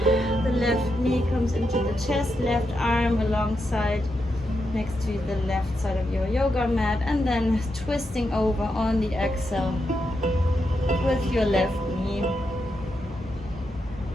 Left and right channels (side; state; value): both; normal; correlation 0.84